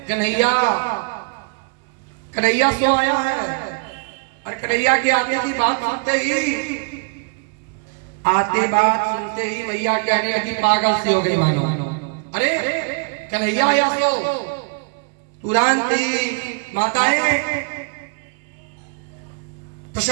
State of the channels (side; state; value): left; quieter; 36.8 dB